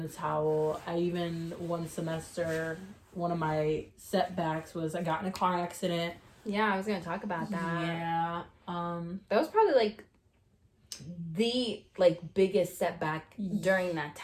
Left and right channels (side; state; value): both; identical; correlation 1.00